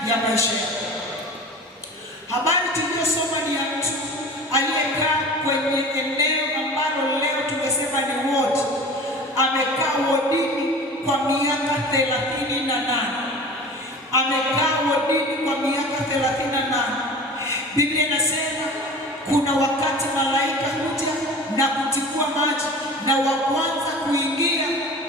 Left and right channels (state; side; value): normal; both; correlation 0.38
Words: ya maisha yako. Habari tuliyosoma ni ya mtu aliyekaa kwenye eneo ambalo leo tungesema ni ward. Amekaa wodini kwa miaka 38. Amekaa wodini kwa miaka 38. Biblia inasema kuna wakati malaika huja na kutikua maji, na wa kwanza kuingia